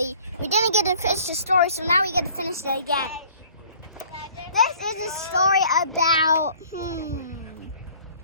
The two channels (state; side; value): inverted; both; correlation -0.53